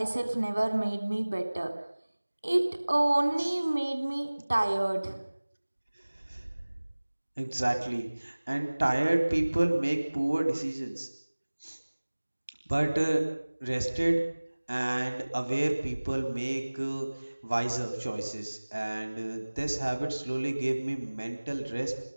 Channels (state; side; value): inverted; both; correlation -1.00